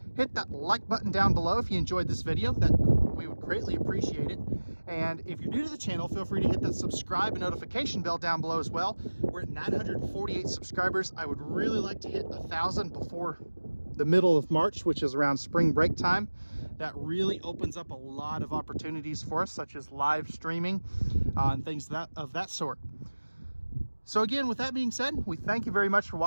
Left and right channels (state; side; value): inverted; both; correlation -1.00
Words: hit that like button down below if you enjoyed this video. That we would greatly appreciate it. And if you're new to the channel, feel free to hit that subscribe and notification bell down below as well. We're at 948 subscribers. I would really like to hit 1,000 before the middle of March, which is around spring break time. That really opens up a lot of opportunities for us, such as live streaming and things of that sort. So again, with that being said, we thank you very much for